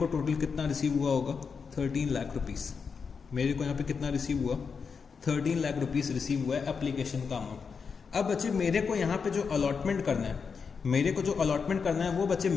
टोटल कितना रिसीव हुआ होगा? 13 लाख रुपीस। मेरे को यहाँ पे कितना रिसीव हुआ? 13 लाख रुपीस रिसीव हुआ है एप्लीकेशन का अमाउंट। अब बच्चे मेरे को यहाँ पे जो अलॉटमेंट करना है, मेरे को जो अलॉटमेंट करना है वो बच्चे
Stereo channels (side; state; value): right; quieter; 5.7 dB